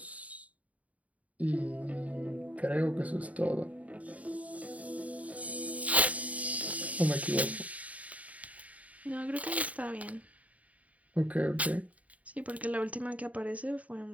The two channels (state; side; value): late; left; 0.069 ms